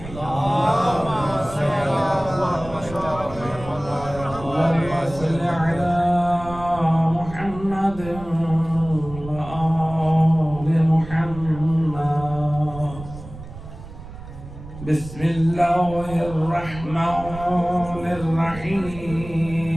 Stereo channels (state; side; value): noise; right; rumble, 14 dB below the sound